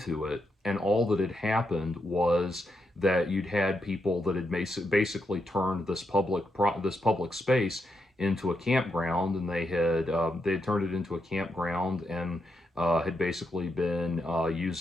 it, and all that had happened was that you'd had people that had basically turned this public space into a campground, and they had turned it into a campground, and had basically been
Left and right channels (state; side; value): normal; both; correlation 0.82